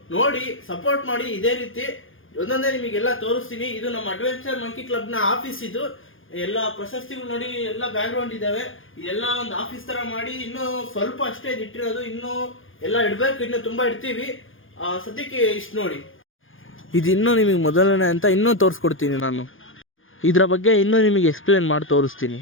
ನೋಡಿ ಸಪೋರ್ಟ್ ಮಾಡಿ. ಇದೇ ರೀತಿ ಒಂದೊಂದೇ ನಿಮಗೆಲ್ಲ ತೋರಿಸ್ತೀನಿ. ಇದು ನಮ್ಮ ಅಡ್ವೆಂಚರ್ ಮಂಕಿ ಕ್ಲಬ್ನ ಆಫೀಸ್. ಇದು ಎಲ್ಲ ಪ್ರಶಸ್ತಿಗಳು ನೋಡಿ, ಎಲ್ಲ ಬ್ಯಾಕ್ ಗ್ರೌಂಡ್ ಇದಾವೆ. ಇದೆಲ್ಲ ಒಂದು ಆಫೀಸ್ ತರ ಮಾಡಿ ಇನ್ನೂ ಸ್ವಲ್ಪ ಅಷ್ಟೇ ಇಟ್ಟಿರೋದು. ಇನ್ನೂ ಎಲ್ಲ ಇಡಬೇಕು, ಇನ್ನೂ ತುಂಬಾ ಇಡ್ತೀವಿ. ಸದ್ಯಕ್ಕೆ ಇಷ್ಟು ನೋಡಿ. ಇದು ಇನ್ನೂ ನಿಮಗೆ ಮೊದಲನೇ ಅಂತ ಇನ್ನೂ ತೋರಿಸ್ಕೊಡ್ತೀನಿ. ನಾನು ಇದರ ಬಗ್ಗೆ ಇನ್ನೂ ನಿಮಗೆ ಎಕ್ಸ್ಪ್ಲೇನ್ ಮಾಡಿ ತೋರಿಸ್ತೀನಿ.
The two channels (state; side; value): late; right; 0.58 ms